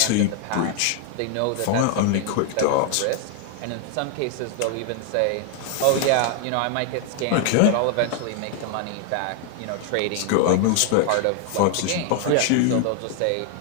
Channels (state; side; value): different; both; correlation 0.00